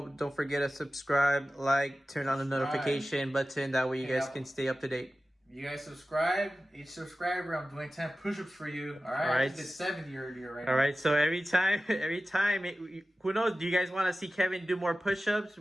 Don't forget to subscribe, like, turn on the notification button. That way you guys can stay up to date. You guys subscribe. Each subscriber, I'm doing 10 push-ups for you. All right. I did 70 earlier right now. All right. So every time, who knows? Do you guys want to see Kevin do more push-ups?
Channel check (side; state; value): both; normal; correlation 0.95